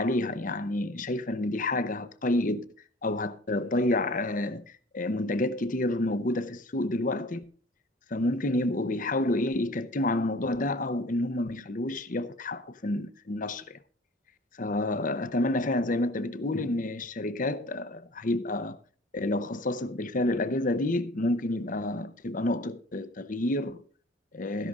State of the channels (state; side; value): normal; both; correlation 0.46